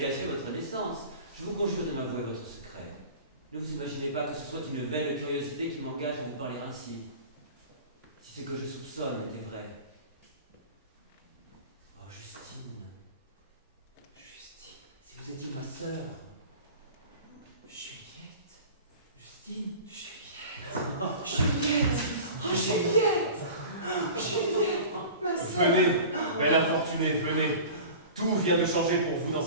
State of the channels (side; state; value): both; inverted; correlation -0.37